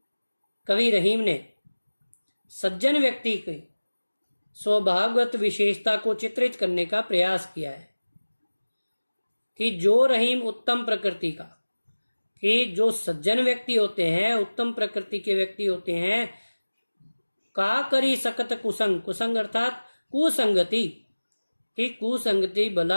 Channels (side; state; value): both; inverted; correlation -1.00